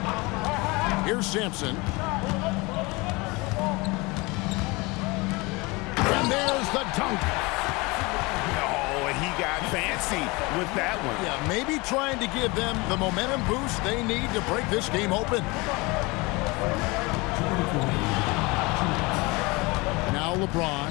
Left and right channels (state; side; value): quieter; right; 25.0 dB